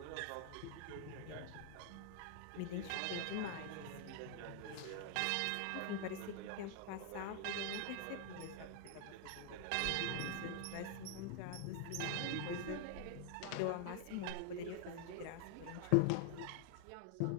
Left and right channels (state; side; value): different; both; correlation 0.00